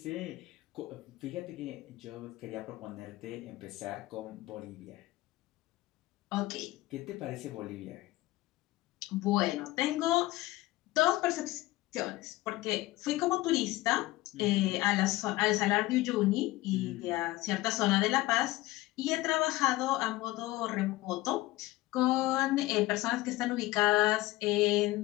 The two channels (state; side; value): quieter; right; 18.4 dB